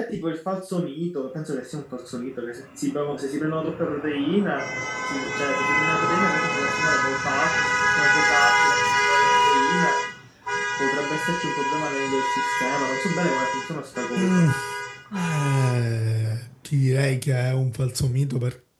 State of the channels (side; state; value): both; identical; correlation 1.00